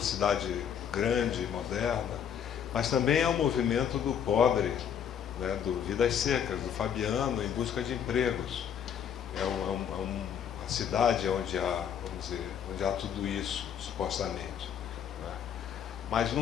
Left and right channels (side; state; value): right; quieter; 8.5 dB